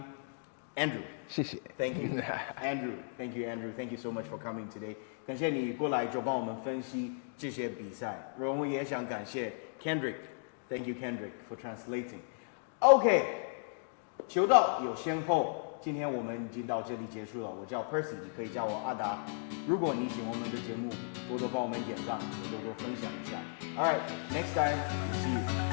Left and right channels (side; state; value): right; silent; digital silence